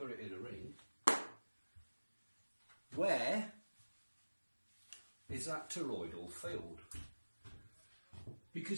it in a ring, where is that toroidal field?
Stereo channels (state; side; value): inverted; both; correlation -1.00